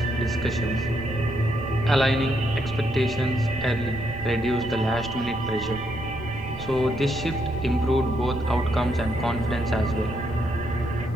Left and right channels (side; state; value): right; noise; rumble, 12 dB below the sound